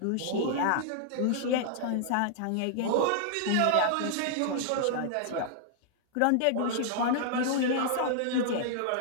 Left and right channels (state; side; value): different; both; correlation -0.01